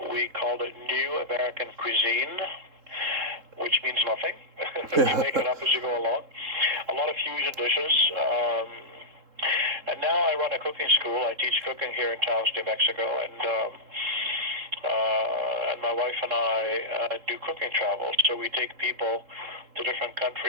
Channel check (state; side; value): late; left; 3.7 ms